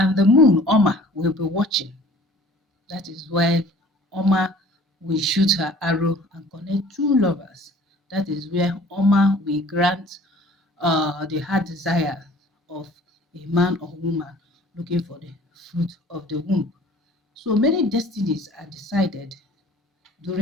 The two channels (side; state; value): both; normal; correlation 0.50